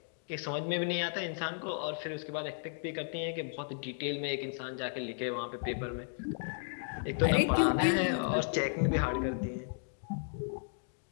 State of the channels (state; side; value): silent; right; digital silence